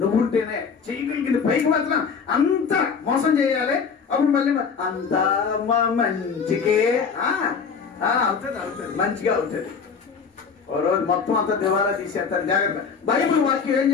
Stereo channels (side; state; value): right; quieter; 5.9 dB